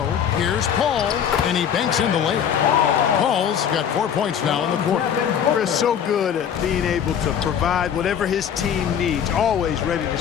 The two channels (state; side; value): quieter; right; 8.5 dB